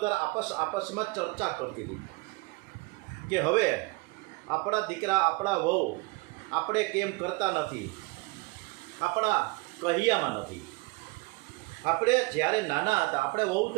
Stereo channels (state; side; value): quieter; left; 25.3 dB